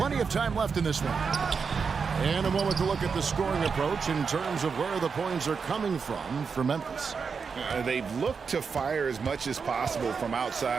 of time left in this one. And a moment to look at the scoring approach in terms of where the points are coming from for Memphis. They've looked to fire as much as possible from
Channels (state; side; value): quieter; left; 5.6 dB